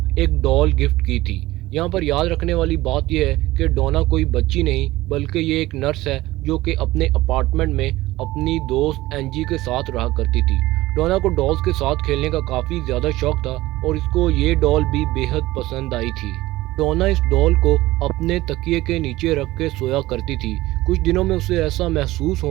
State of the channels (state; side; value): quieter; left; 17.8 dB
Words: ایک ڈول گفٹ کی تھی۔ یہاں پر یاد رکھنے والی بات یہ ہے کہ ڈونا کوئی بچی نہیں بلکہ یہ ایک نرس ہے جو کہ اپنے اپارٹمنٹ میں اپنی دوست اینجی کے ساتھ رہا کرتی تھی۔ ڈونا کو ڈالز کے ساتھ کھیلنے کا کافی زیادہ شوق تھا اور اس کو یہ ڈال بھی بے حد پسند آئی تھی۔ ڈونا اس ڈال کو اپنے تکیے کے نیچے رکھ کے سویا کرتی تھی۔ کچھ دنوں میں اسے ایسا محسوس